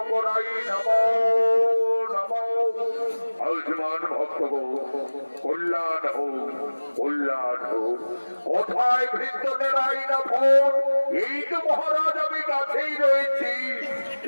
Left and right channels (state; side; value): inverted; both; correlation -1.00